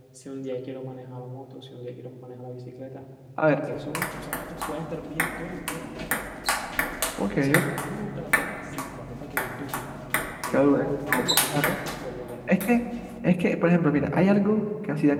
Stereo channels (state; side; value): identical; both; correlation 1.00